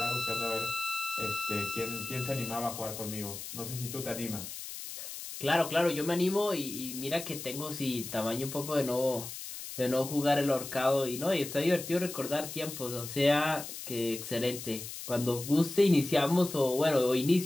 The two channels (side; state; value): left; noise; hiss, 9 dB below the sound